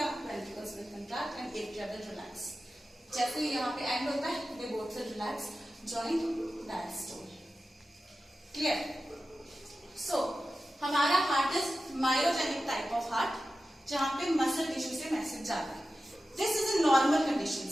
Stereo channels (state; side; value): normal; both; correlation 0.94